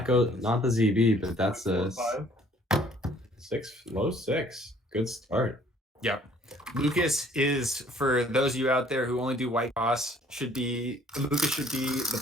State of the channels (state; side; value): normal; both; correlation 0.59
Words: the ZB, but that's a 6, low 6. Good start. Yep. Lucas is, for those of you out there who only do white cross, Lucas should be the